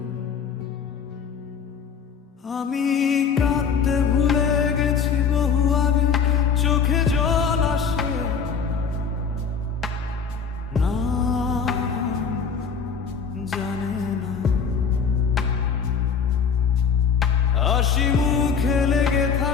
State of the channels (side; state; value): right; quieter; 6.2 dB